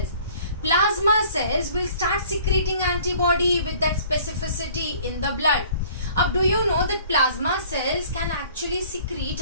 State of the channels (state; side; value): inverted; both; correlation -0.52